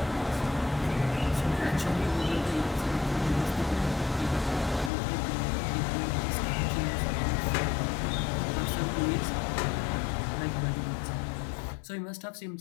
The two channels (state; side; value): drops out; right; at 4.9 s